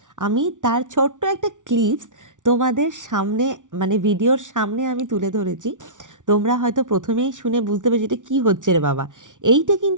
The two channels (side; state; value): left; late; 0.87 ms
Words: আমি তার ছোট্ট একটা ক্লিপস তোমাদের সামনে, মানে ভিডিওর সামনে আমি তুলে ধরেছি। তোমরা হয়তো প্রথমেই শুনে বুঝতে পারছো এটা কী হচ্ছে রে বাবা। এইটা